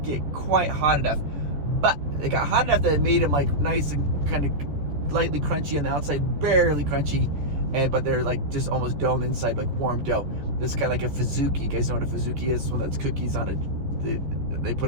get quite hot enough. But it got hot enough that it made them like nice and kind of lightly crunchy on the outside, barely crunchy. But they're like just almost dough on the inside, like warm dough. This is kind of like a fazooki. You guys know what a fazooki is? It's one that's cookies on they put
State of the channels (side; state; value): left; late; 14 ms